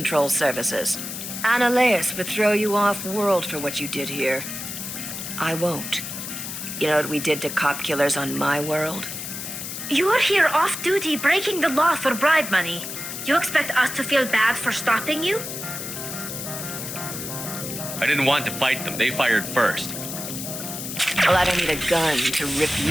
Services. Ananias would throw you off-world for what you did here. I won't. You know what we did to cop killers on my world? You're here off-duty breaking the law for bribe money. You expect us to feel bad for stopping you? I didn't want to fight them. They fired first. Well, I don't need a gun to rip you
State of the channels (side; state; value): left; noise; hiss, 7 dB below the sound